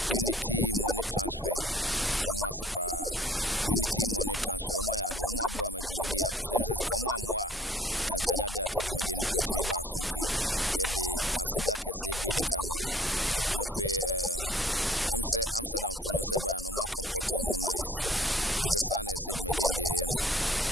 Unity Money Transfer, Omasipa. Unity Money Transfer, Omaya, the Oma Boama Jumedia, Cosem says, come on, moi, and Canada Cajumedin create me basunti, yet the Asidaka said, Bedi Camo. Nafe, say Amsterdam for no seba, no more comport to him nice. Mr. Sana said, Medin de Eno.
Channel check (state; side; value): normal; both; correlation 0.55